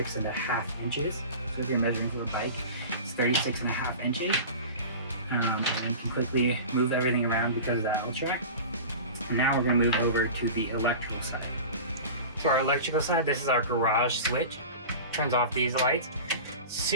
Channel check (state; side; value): inverted; both; correlation -0.34